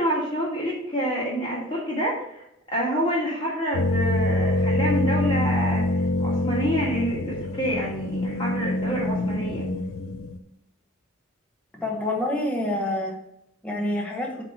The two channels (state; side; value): normal; both; correlation 0.47